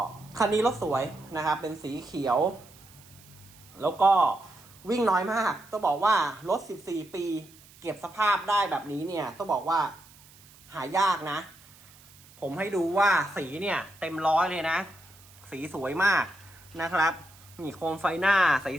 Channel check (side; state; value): right; noise; hiss, 24 dB below the sound